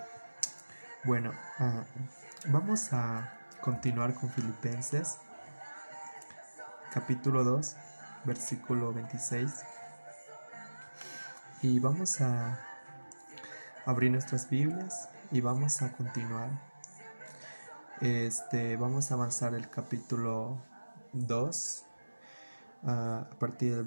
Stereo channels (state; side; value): inverted; both; correlation -1.00